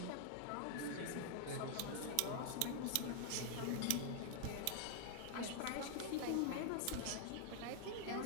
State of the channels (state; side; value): different; both; correlation 0.00